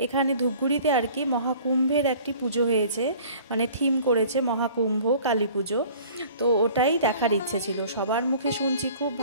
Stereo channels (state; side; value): inverted; both; correlation -0.49